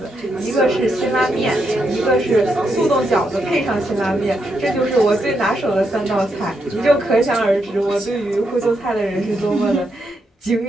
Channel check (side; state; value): both; normal; correlation 0.81